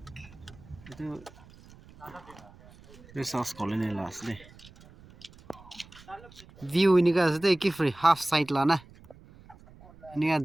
itu sauce colony lah asli view ini kan asli ki free half side lah na ini kan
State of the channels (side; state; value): right; noise; rumble, 23 dB below the sound